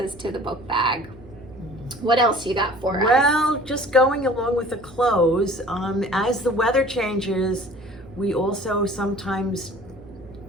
to the book bag. What else you got for us? Well, just going along with the clothes, as the weather changes, we also sometimes,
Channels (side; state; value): right; noise; hum, 20 dB below the sound